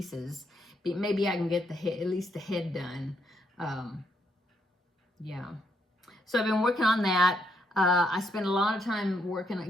Maybe I can get the head, at least the head done. Yeah. So I've been working on that. I spent a lot of time working on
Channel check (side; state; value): both; normal; correlation 0.76